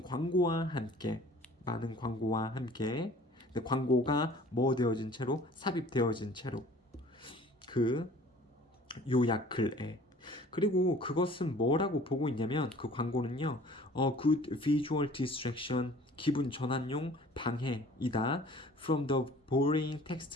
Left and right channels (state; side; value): normal; both; correlation 0.49